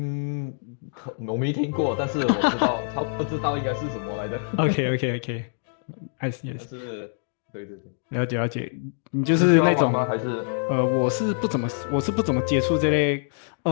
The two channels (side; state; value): right; silent; digital silence